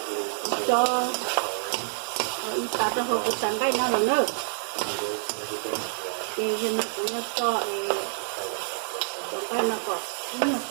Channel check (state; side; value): silent; left; 60 dB below the other